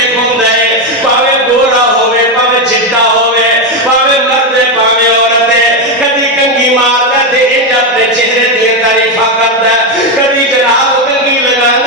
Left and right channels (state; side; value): normal; both; correlation 0.08